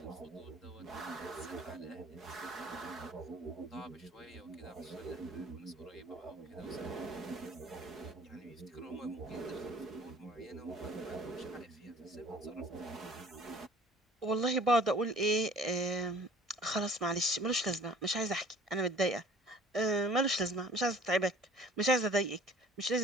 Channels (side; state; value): both; normal; correlation 0.50